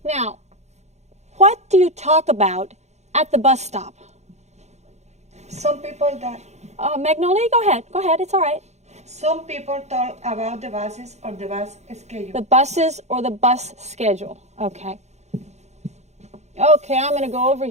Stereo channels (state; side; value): late; left; 0.33 ms